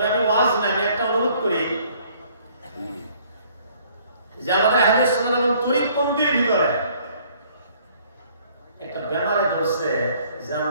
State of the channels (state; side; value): inverted; both; correlation -0.60